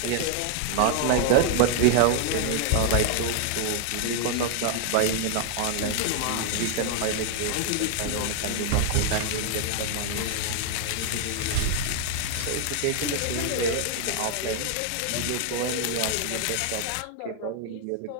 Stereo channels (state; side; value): different; both; correlation 0.00